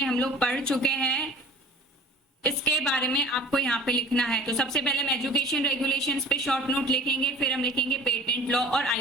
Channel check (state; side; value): normal; both; correlation 0.44